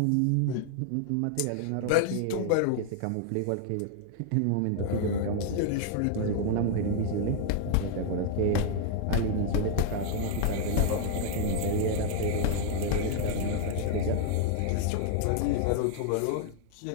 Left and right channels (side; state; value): both; different; correlation 0.00